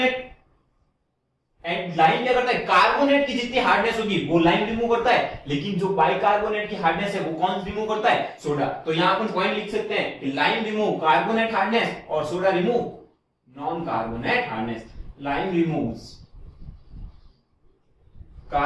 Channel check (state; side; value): identical; both; correlation 1.00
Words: एंड लाइम क्या करता है, कार्बोनेट की जितनी हार्डनेस होगी वो लाइम रिमूव करता है, लेकिन जो बाइकार्बोनेट की हार्डनेस है वो कौन रिमूव करता है, सोडा। तो यहां अपन पॉइंट लिख सकते हैं कि लाइम रिमूव कार्बोनेट हार्डनेस और soda remove non carbonate hardness. Lime removes